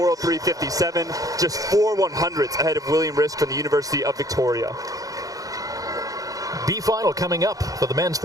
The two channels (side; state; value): left; late; 0.17 ms